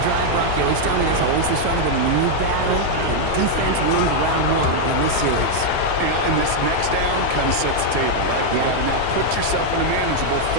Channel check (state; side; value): different; both; correlation 0.00